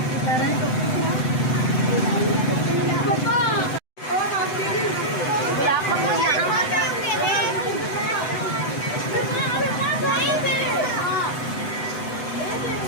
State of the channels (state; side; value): late; right; 7.9 ms